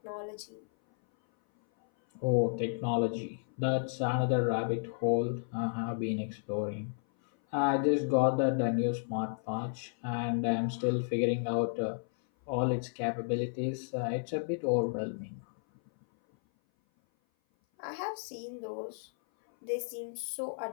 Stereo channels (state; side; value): silent; right; 56 dB below the other